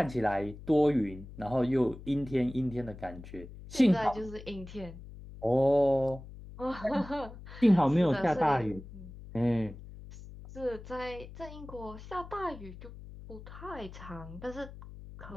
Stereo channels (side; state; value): left; noise; hum, 15 dB below the sound